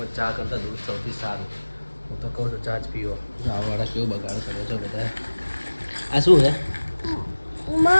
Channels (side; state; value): both; inverted; correlation -1.00